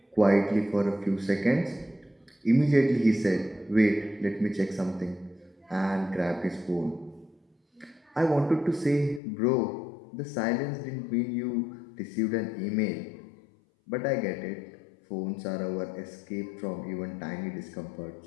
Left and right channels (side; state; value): right; drops out; at 9.2 s